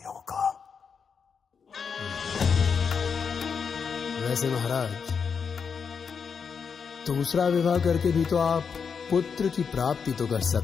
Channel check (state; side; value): quieter; right; 6.1 dB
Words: होगा। वैसे महाराज, दूसरा विवाह करके भी तो आप पुत्र की प्राप्ति तो कर